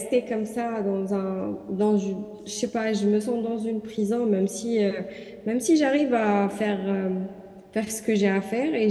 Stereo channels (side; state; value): both; identical; correlation 1.00